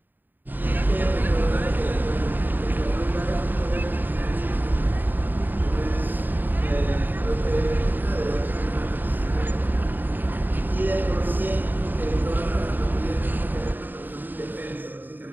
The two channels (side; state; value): left; late; 0.090 ms